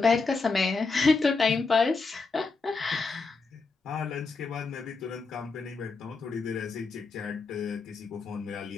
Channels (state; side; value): quieter; right; 4.2 dB